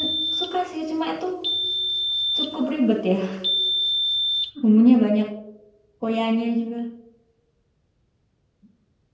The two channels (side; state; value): both; identical; correlation 1.00